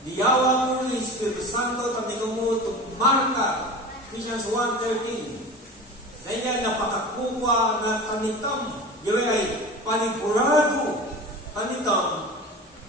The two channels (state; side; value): normal; both; correlation 0.33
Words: diyawa mo ni Espiritu Santo, tapos mo tumarka, Ephesians 1:13. Dahil napakakuha na tanitam, yun ay panigurado tanitam